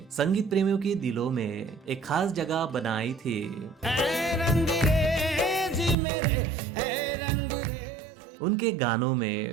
संगीत प्रेमियों के दिलों में एक खास जगह बनाई थी। उनके गानों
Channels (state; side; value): drops out; left; at 6.0 s